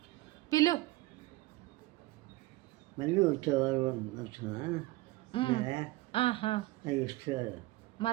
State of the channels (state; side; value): quieter; left; 18.8 dB